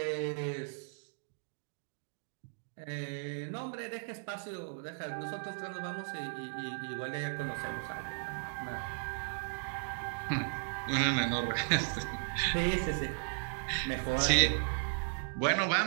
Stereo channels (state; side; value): silent; left; digital silence